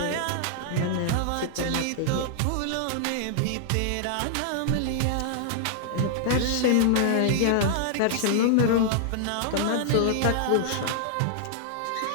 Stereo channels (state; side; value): different; both; correlation -0.01